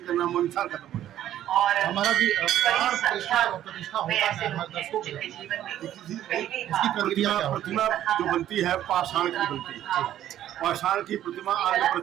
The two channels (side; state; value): left; quieter; 12.0 dB